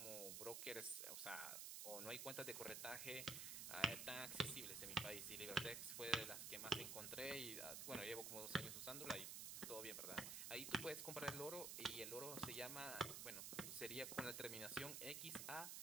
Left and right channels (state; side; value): noise; right; hiss, 3 dB below the sound